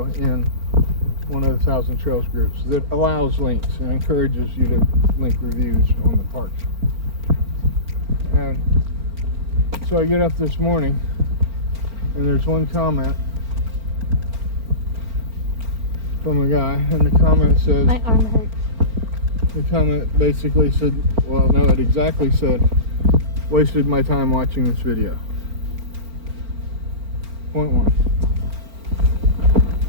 in one of the 1,000 Trails groups that allows links and encourages you to link reviews on the parks. And so I get up this morning and there's one comment from a guy, and the comment says, my arm hurts. The comment basically said, well, no, it exactly said, wasted my time watching this video. Point one.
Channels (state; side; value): late; left; 4.4 ms